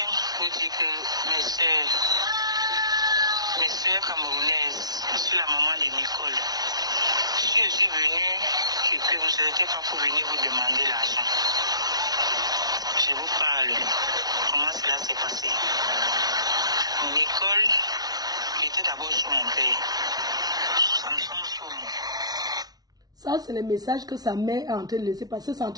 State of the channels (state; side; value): late; left; 0.19 ms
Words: vous dire que mes sœurs camerounaises, je suis la maman de Nicole. Je Si je suis venu, c'est que vous n'étiez pas pour venir vous demander l'argent. Je vous parle. Comment cela s'est passé? Nicole était d'abord sur mon père. Samson Soumou. Ça, c'est le message que sa mère est en train de laisser passer. C'est en